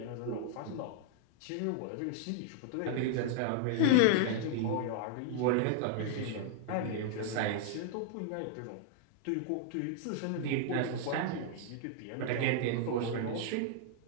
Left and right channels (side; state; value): both; different; correlation -0.01